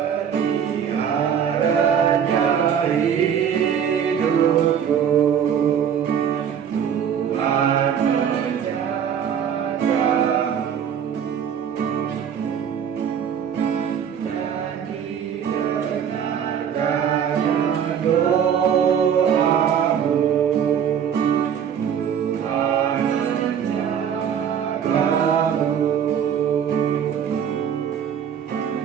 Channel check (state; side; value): quieter; left; 8.2 dB